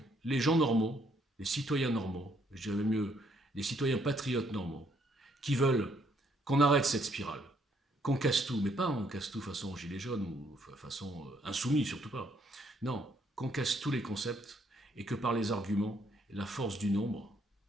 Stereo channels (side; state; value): both; normal; correlation 0.69